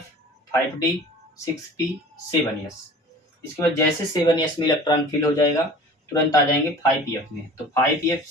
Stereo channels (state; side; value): normal; both; correlation 0.43